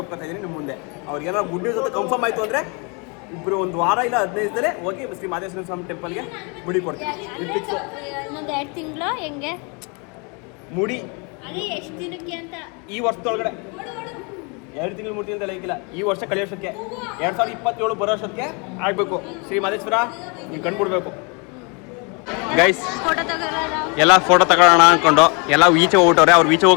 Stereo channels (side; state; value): right; quieter; 32.6 dB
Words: ಒಪ್ಕೊತಾ ಇದ್ದೀನಿ ನಿಮ್ಮ ಮುಂದೆ. ಅವ್ರಿಗೇನಾದ್ರು ಗುಡ್ ನ್ಯೂಸ್ ಅಂತ ಕನ್ಫರ್ಮ್ ಆಯಿತು ಅಂದರೆ ಇಬ್ಬರು 1 ವಾರ ಇಲ್ಲ 15 ದಿನ ಹೋಗಿ ಶ್ರೀ ಮಹಾದೇಶ್ವರ ಸ್ವಾಮಿ ಟೆಂಪಲ್ಗೆ ಮುಡಿ ಕೊಡ್ತೀನಿ. ಇನ್ನೊಂದು 2 ತಿಂಗಳು ಹೆಂಗೆ ಮುಡಿ ಅದೇ ಎಷ್ಟು ದಿನಕ್ಕೆ ಅಂತ ಈ ವರ್ಷದೊಳಗಡೆ 2 ತಿಂಗಳು 3 ತಿಂಗಳು ಲೆಕ್ಕಿಲ್ಲ. ಈ ವರ್ಷ ಕಳೆಯೋಷ್ಟಕ್ಕೆ 2027 ಬರೋ ವರ್ಷಕ್ಕೆ ಆಗಬೇಕು. ಶ್ರೀ ಮಹದೇಶ್ವರ ನೀವು ಕಂಡುಬಿಡ್ಬೇಕು ಗೈಸ್. ಫೋಟೋ ತಗೋರ ಎಲ್ಲ ಫೋಟೋ ತಗೊಳ್ಳೋಣ ಅಂದ್ಕೊಂಡು ಎಲ್ಲ ಈಚೆ ಹೋಗ್ಬಿಟ್ಟವ್ರೆ. ಅವ್ರು ಈಚೆ